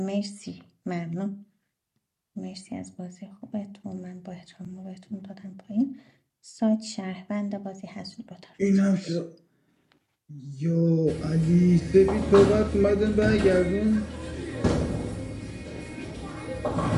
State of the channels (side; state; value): both; identical; correlation 1.00